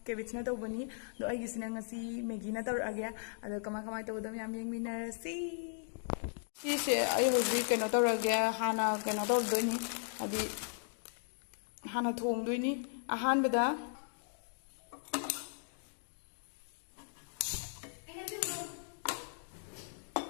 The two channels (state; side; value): silent; right; digital silence